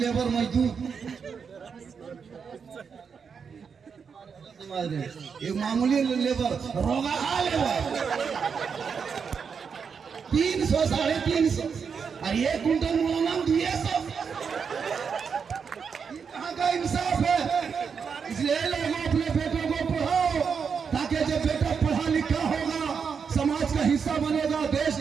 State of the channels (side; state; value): left; quieter; 6.2 dB